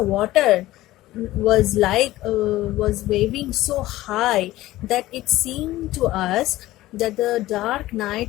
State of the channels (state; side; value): quieter; right; 16.5 dB